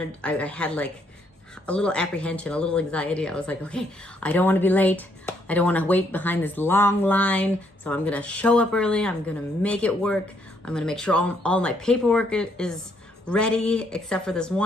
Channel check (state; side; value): normal; both; correlation 0.71